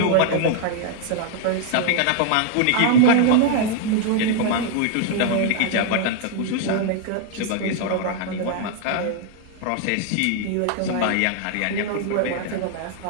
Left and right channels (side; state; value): both; different; correlation 0.00